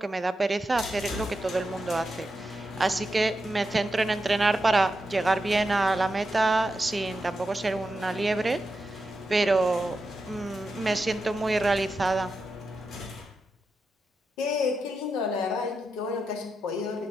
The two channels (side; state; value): both; normal; correlation 0.88